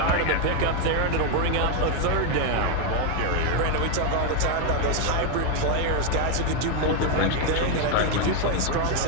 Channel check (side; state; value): both; different; correlation 0.01